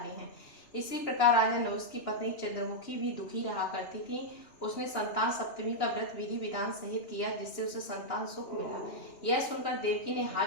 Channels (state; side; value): late; right; 2.9 ms